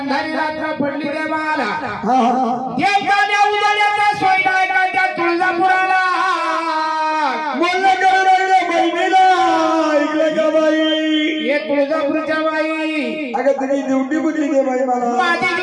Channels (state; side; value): identical; both; correlation 1.00